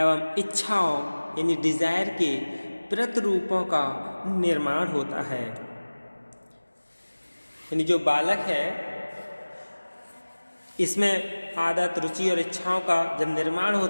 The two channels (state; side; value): inverted; both; correlation -1.00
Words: इच्छाओं यानी डिजायर के प्रतिरूपों का निर्माण होता है। यानी जो बालक है इसमें आदत, रुचि और इच्छाओं का जब निर्माण